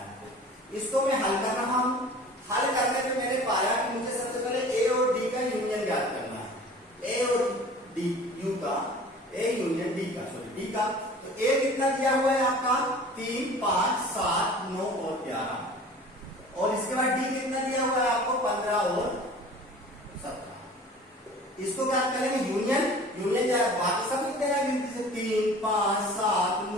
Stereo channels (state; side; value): normal; both; correlation 0.43